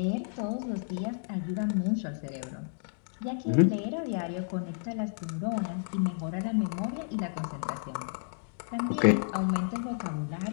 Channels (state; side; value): silent; right; digital silence